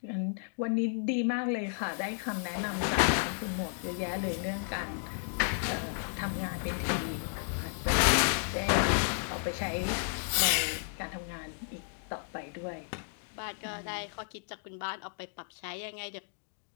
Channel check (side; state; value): right; silent; digital silence